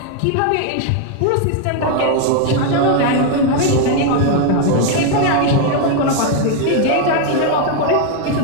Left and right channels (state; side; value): different; both; correlation 0.01